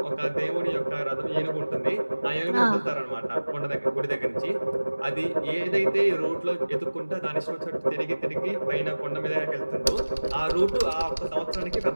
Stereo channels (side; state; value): both; inverted; correlation -1.00